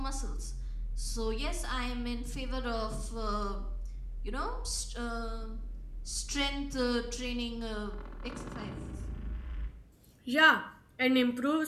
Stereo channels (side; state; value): both; identical; correlation 1.00